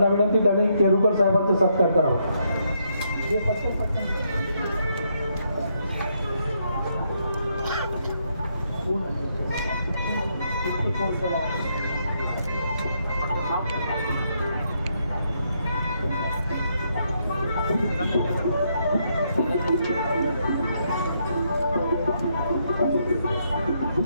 विनंती, त्यांनी केरुकर साहेबांचा सत्कार करावा.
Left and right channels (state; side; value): inverted; both; correlation -0.76